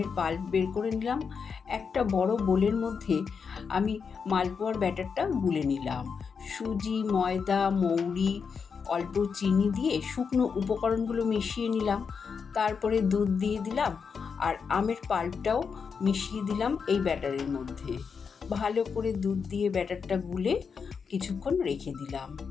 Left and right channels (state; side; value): quieter; right; 5.9 dB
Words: পাল্প বের করে নিলাম। একটা বড় বোলের মধ্যে আমি মালপোয়ার ব্যাটারটা গুলে নিলাম। সুজি, ময়দা, মৌরি, অল্প চিনি দিয়ে শুকনো উপকরণগুলো মিশিয়ে নিলাম। তারপরে দুধ দিয়ে দিলাম আর আমের পাল্পটাও মিশিয়ে দিলাম এই ব্যাটারের মধ্যে। ভালো করে দুধ দিয়ে ব্যাটারটা গুলে কিছুক্ষণ রেখে দিলাম।